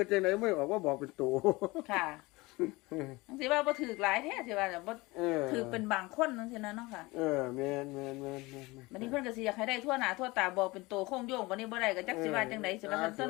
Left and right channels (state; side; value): quieter; right; 22.5 dB